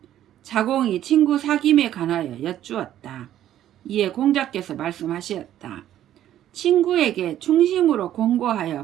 자공이 친구 사귐에 관하여 여쭈었다. 이에 공자께서 말씀하셨다. 친구에게 충심으로 공고하여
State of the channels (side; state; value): left; quieter; 11.9 dB